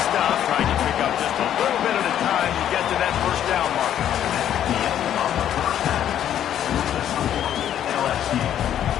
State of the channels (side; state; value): right; quieter; 10.5 dB